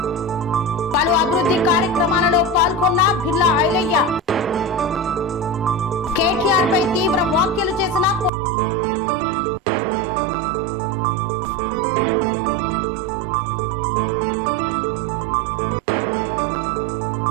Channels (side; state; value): left; drops out; at 8.3 s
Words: పలు అభివృద్ధి కార్యక్రమాలలో పాల్గొన్న బిర్లా ఐలయ్య. కేటీఆర్ పై తీవ్ర వ్యాఖ్యలు చేసిన కోమటిరెడ్డి వెంకటరెడ్డి. కొండ బాలకృష్ణ కుటుంబానికి అండగా నిలిచిన అయ్యప్ప సేవా సమితి.